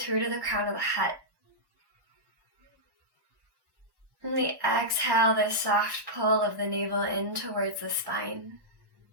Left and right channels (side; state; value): left; late; 1.1 ms